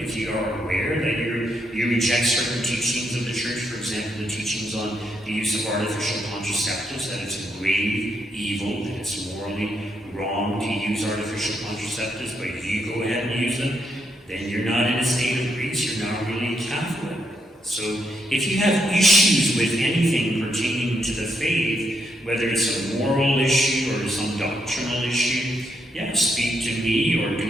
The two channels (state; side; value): normal; both; correlation 0.79